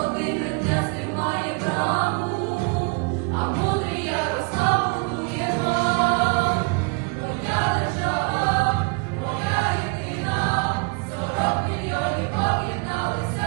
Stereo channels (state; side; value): quieter; left; 32.5 dB